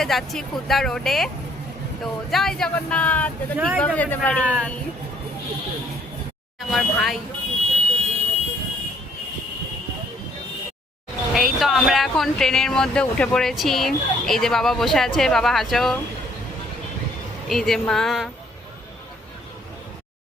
যাচ্ছি খুলনা রোডে। তো জয় জগন্নাথ, ঠিকভাবে যেতে পারি। আমার ভাই, এই তো আমরা এখন ট্রেনের মধ্যে উঠে পড়েছি। এই যে বাবা বসে আছে, বাবা হাসো। এই যে মা।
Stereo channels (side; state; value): both; normal; correlation 0.63